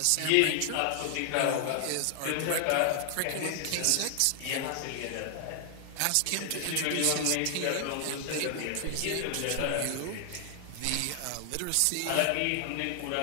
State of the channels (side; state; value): both; different; correlation 0.00